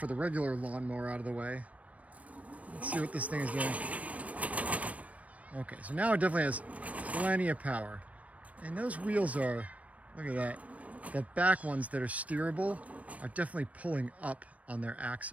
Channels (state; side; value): late; left; 0.067 ms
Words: the regular lawnmower out of the way. Let's see what this thing is doing. Okay, so now it definitely has plenty of power. And those wheels are, look at that. The back ones that are steerable are definitely pulling up on their